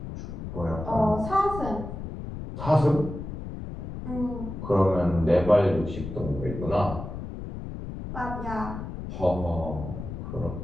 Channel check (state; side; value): noise; left; rumble, 8 dB below the sound